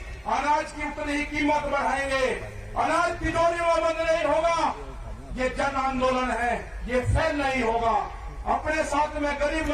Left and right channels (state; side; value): identical; both; correlation 1.00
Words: अनाज की उतनी ही कीमत बढ़ाएंगे। अनाज तिजोरियों में बंद नहीं होगा। ये जन आंदोलन है, ये फेल नहीं होगा। अपने साथ में गरीब